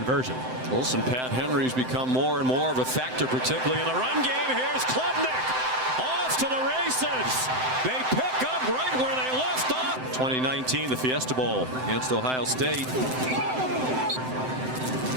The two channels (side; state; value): left; late; 7.8 ms